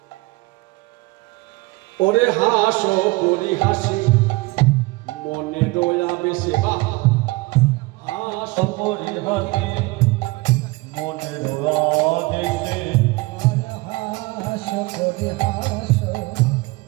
ওরে হাস পরিহাসে মনে দয়া বেশে, হাস পরিহাসে মনে দেশে, হাস পরিহাস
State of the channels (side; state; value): left; quieter; 23.4 dB